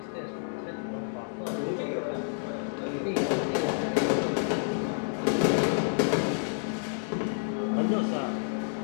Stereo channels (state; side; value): silent; right; digital silence